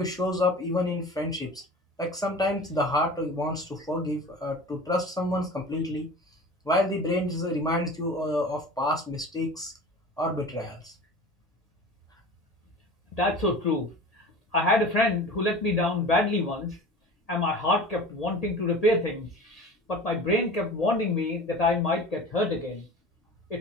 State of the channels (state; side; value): normal; both; correlation 0.38